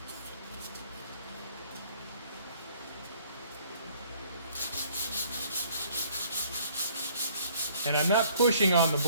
And I'm not pushing on the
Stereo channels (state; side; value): inverted; both; correlation -0.59